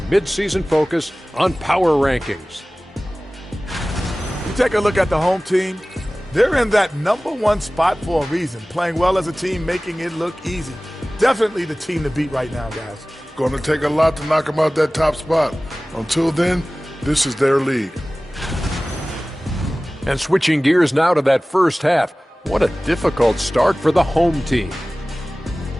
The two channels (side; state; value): both; normal; correlation 0.98